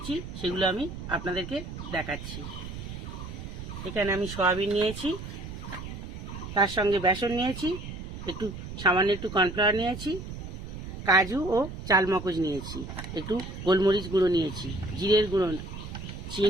সেগুলো আমি আপনাদেরকে দেখাচ্ছি। এখানে আমি সোয়াবিন নিয়েছি, তার সঙ্গে বেসন নিয়েছি, সামান্য একটু কর্নফ্লাওয়ার নিয়েছি, কাজু ও চালমগজ নিয়েছি, একটু গোলমরিচ গুঁড়ো নিয়েছি, জিরের গুঁড়ো,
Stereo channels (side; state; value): right; noise; rumble, 9 dB below the sound